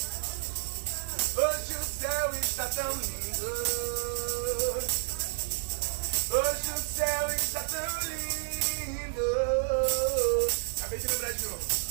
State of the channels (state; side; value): silent; left; 57 dB below the other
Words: Hoje o céu está tão lindo. Hoje o céu está tão lindo. Acabei de lembrar de novo.